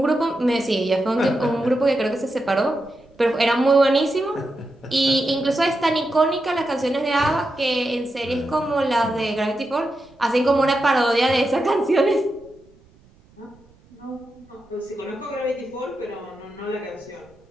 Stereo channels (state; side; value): noise; right; rumble, 29 dB below the sound